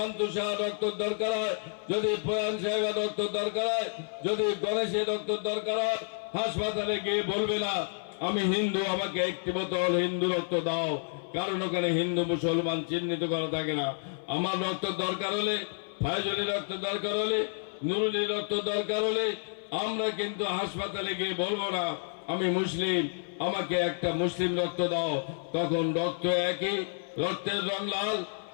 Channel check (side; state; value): right; silent; 56 dB below the other